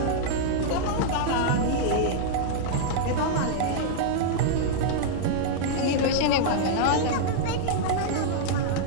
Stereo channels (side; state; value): both; different; correlation -0.01